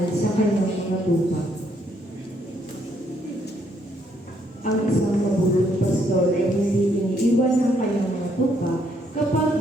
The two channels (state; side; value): normal; both; correlation 0.71